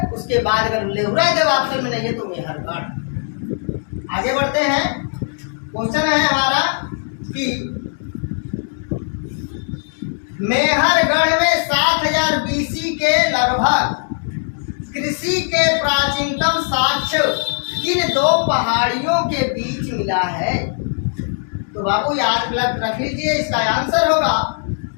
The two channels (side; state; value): right; silent; digital silence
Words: उसके बाद अगर लेहुरा देव ऑप्शन में नहीं है तो मेहरगढ़। आगे बढ़ते हैं। क्वेश्चन है हमारा कि मेहरगढ़ में 7000 बीसी के लगभग कृषि के प्राचीनतम साक्ष्य किन दो पहाड़ियों के बीच मिला है? तो बाबू याद रख लीजिए, इसका आंसर होगा